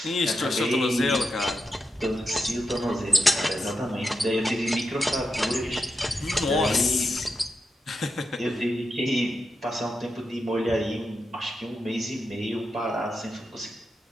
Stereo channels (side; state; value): both; normal; correlation 0.87